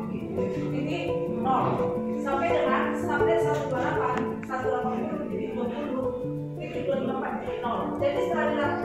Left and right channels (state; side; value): identical; both; correlation 1.00